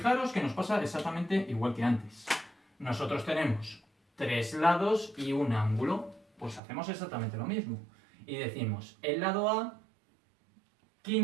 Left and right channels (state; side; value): drops out; left; at 6.6 s